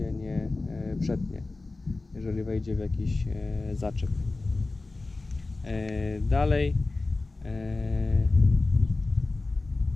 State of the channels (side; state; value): right; quieter; 3.4 dB